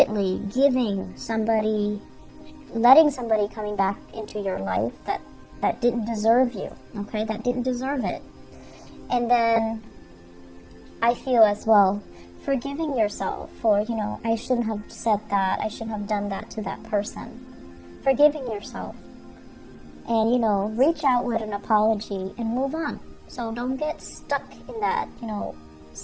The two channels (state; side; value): identical; both; correlation 1.00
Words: letting somebody coming back into your life that didn't deserve you, okay, that didn't deserve it. And then I feel as well, forgiving yourself for, I shouldn't have said that, I shouldn't have done that to that person. Forgiving yourself. And, reach out with an apology and move on. So don't get stuck in that,